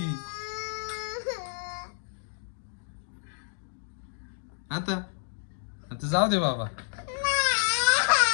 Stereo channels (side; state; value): right; silent; digital silence